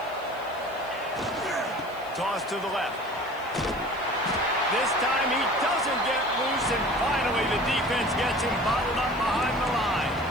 Toss to the left. This time he doesn't get loose, and finally the defense gets him bottled up behind the line.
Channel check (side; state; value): left; noise; hiss, 25 dB below the sound